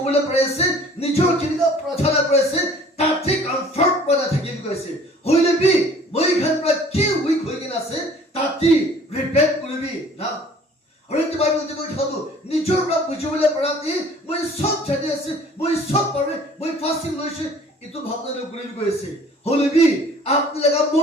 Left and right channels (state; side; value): normal; both; correlation 0.51